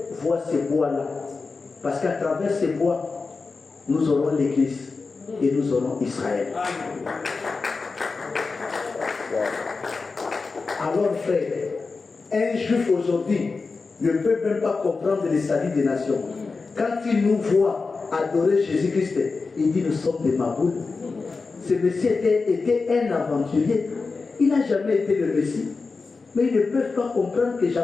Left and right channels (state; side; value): quieter; right; 4.3 dB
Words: voit ces bois-là. Parce qu'à travers ces bois, nous aurons l'Église et nous aurons Israël. Alors frère, un juif aujourd'hui ne peut même pas comprendre le salut des nations. Quand il nous voit adorer Jésus-Christ, il dit nous sommes des Maboules. Ce Messie était un aventurier. Il n'a jamais été le Messie. Mais ils ne peuvent pas comprendre que